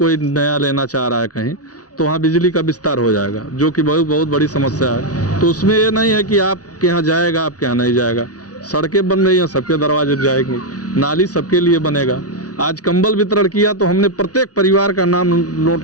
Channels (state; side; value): late; right; 0.68 ms